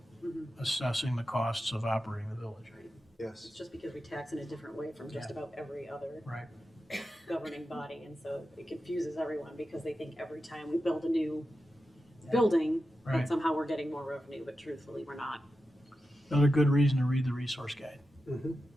assessing the costs of operating the village. Yes. It's just because we tax in a different way from just about every other Right. governing body, and so it confuses everyone because they think every time we build a new building, Right. that somehow we're getting more revenue, but truthfully, we're not. Another good reason to read the resource guide.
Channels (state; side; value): normal; both; correlation 0.91